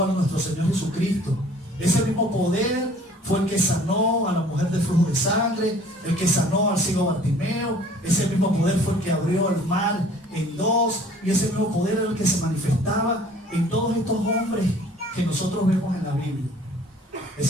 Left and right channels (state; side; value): normal; both; correlation 0.53